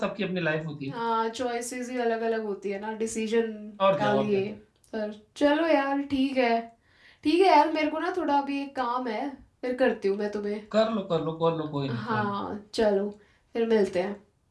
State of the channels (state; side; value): identical; both; correlation 1.00